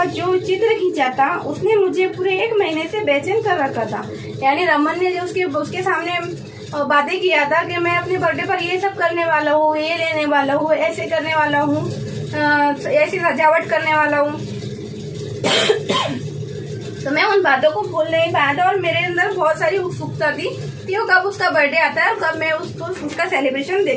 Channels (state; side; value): identical; both; correlation 1.00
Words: जो चित्र खींचा था उसने मुझे पूरे 1 महीने से बेचैन कर रखा था। यानी रमन ने जो उसके सामने बातें किया था कि मैं अपने बर्थडे पर ये सब करने वाला हूँ, ये लेने वाला हूँ, ऐसे करने वाला हूँ, ऐसी सजावट करने वाला हूँ तो मैं उन बातों को भूल नहीं पाया था, और मेरे अंदर बहुत सारी उत्सुकता थी कि वो कब उसका बर्थडे आता है और कब मैं उसका सेलिब्रेशन